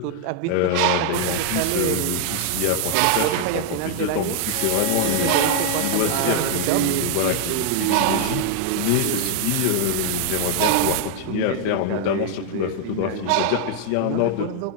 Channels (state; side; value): different; both; correlation 0.00